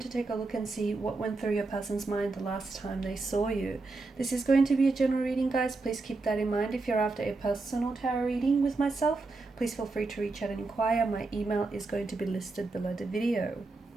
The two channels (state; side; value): quieter; left; 3.5 dB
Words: take a look and see what went through your person's mind the last time they saw you. This is going to be a general reading, guys. Please keep that in mind. If you're after a personal tarot reading with myself, please feel free to reach out and inquire. My email is going to be listed below the video.